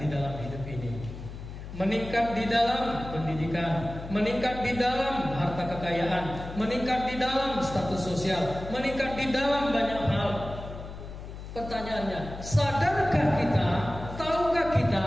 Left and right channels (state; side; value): noise; left; hum, 11 dB below the sound